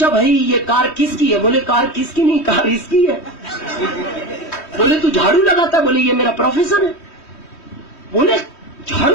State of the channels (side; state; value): right; late; 3.1 ms